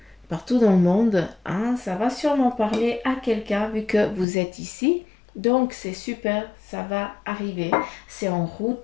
partout dans le monde, hein, ça va sûrement parler à quelqu'un vu que vous êtes ici. Donc, c'est super, ça va arriver. C'est en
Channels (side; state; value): right; drops out; at 4.2 s